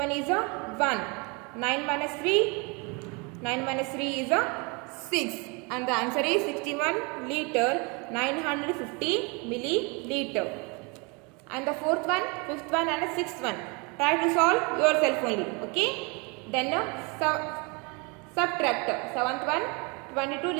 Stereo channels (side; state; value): left; quieter; 30.5 dB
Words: is 1. 9 minus 3, 9 minus 3 is 6. And the answer is 61 liter, 950 milliliter. And the fourth one, fifth one and the sixth one, try to solve yourself only. Okay. Then subtract. Seventh one, 22